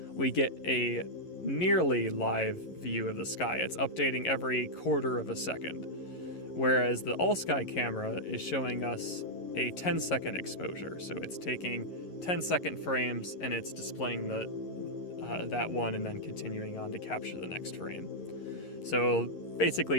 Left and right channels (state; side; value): late; right; 11 ms